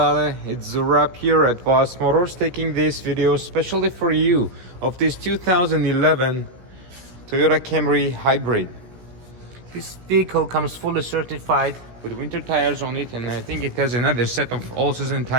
it's Zurab here at Voss Motors taking this video especially for you of this 2011 Toyota Camry Hybrid. This vehicle comes fully certified with winter tires on it, and I think it has another set of all-season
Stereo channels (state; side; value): late; left; 17 ms